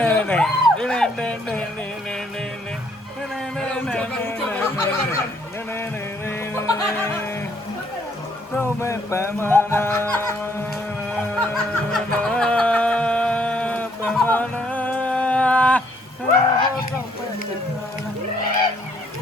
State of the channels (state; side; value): normal; both; correlation 0.67